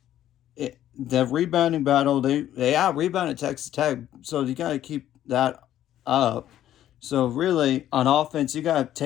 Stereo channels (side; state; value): right; quieter; 12.1 dB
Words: the rebounding battle, they out-rebounded Texas Tech, so you got to keep that up. So really, on offense, you got to